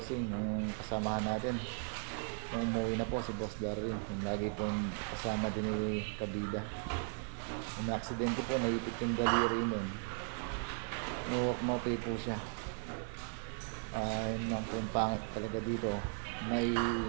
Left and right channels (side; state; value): left; quieter; 40.0 dB